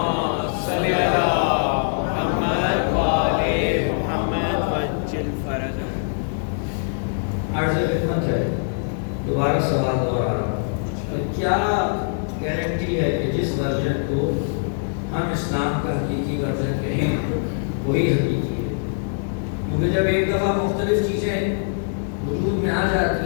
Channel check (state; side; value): silent; right; digital silence